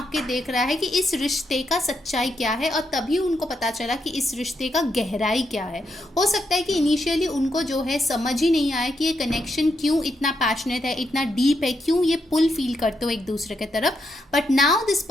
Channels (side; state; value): both; normal; correlation 0.81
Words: के देख रहा है कि इस रिश्ते का सच्चाई क्या है, और तभी उनको पता चला कि इस रिश्ते का गहराई क्या है। हो सकता है कि इनिशियली उनको जो है समझ ही नहीं आया कि ये कनेक्शन क्यों इतना पैशनेट है, इतना डीप है, क्यों ये पुल फील करते हो एक दूसरे के तरफ। But now this